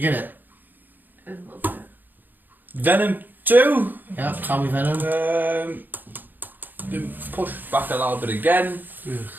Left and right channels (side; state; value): left; late; 0.088 ms